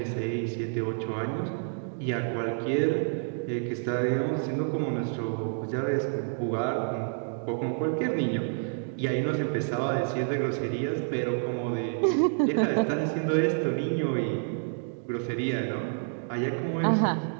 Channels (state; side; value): silent; left; digital silence